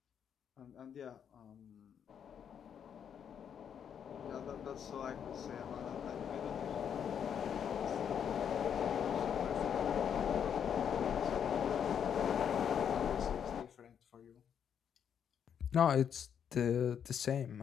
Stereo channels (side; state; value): right; quieter; 8.2 dB